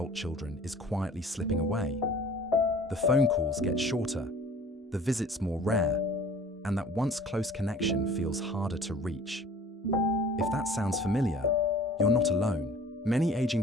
children is quietly slipping away? The phone calls get shorter, the visits more rare, and that once close connection feels harder to reach. If that sounds familiar, you're not alone. Many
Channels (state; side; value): normal; both; correlation 0.48